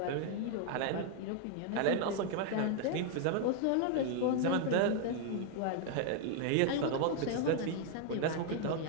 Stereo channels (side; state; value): both; different; correlation 0.00